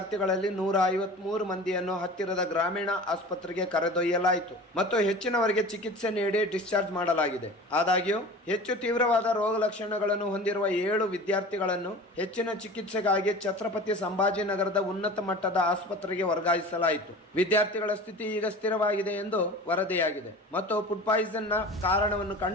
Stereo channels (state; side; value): normal; both; correlation 0.38